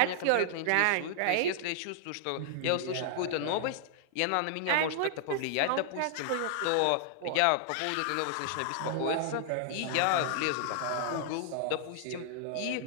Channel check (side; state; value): both; different; correlation -0.01